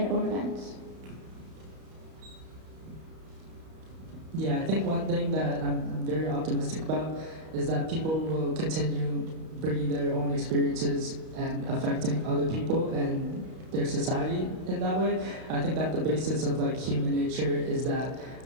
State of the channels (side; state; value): left; late; 31 ms